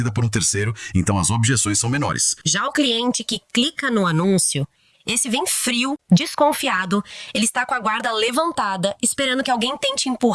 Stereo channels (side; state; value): both; identical; correlation 1.00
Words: por um terceiro, então as objeções são menores. Já o cliente que clica no anúncio, esse vem frio, desconfiado, ele está com a guarda levantada, esperando que alguém tente